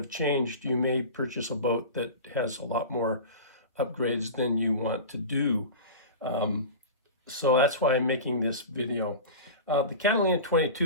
changed, you may purchase a boat that has a lot more upgrades than you want to do. So that's why I'm making this video. The Catalina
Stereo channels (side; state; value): both; inverted; correlation -0.30